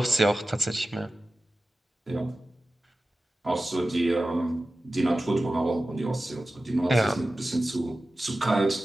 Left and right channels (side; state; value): both; normal; correlation 0.95